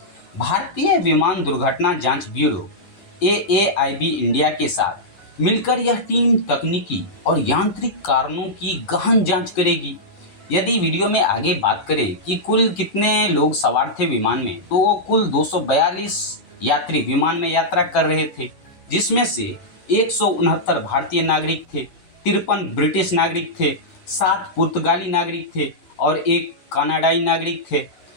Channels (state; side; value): late; right; 10 ms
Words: भारतीय विमान दुर्घटना जांच ब्यूरो AAIB इंडिया के साथ मिलकर यह टीम तकनीकी और यांत्रिक कारणों की गहन जांच करेगी। यदि वीडियो में आगे बात करें कि कुल कितने लोग सवार थे विमान में, तो कुल 242 यात्री विमान में यात्रा कर रहे थे, जिसमें से 169 भारतीय नागरिक थे, 53 ब्रिटिश नागरिक थे, 7 पुर्तगाली नागरिक थे और 1 कनाडाई नागरिक थे।